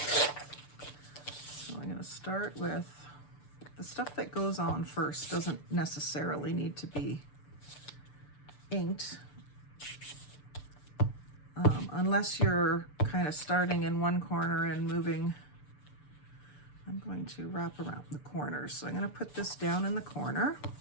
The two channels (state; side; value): late; right; 6.8 ms